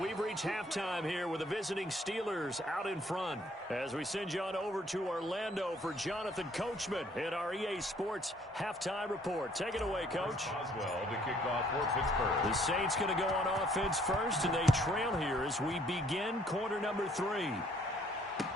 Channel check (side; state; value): both; normal; correlation 0.62